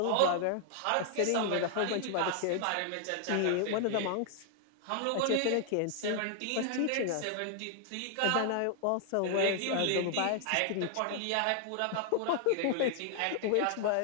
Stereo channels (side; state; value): both; different; correlation 0.00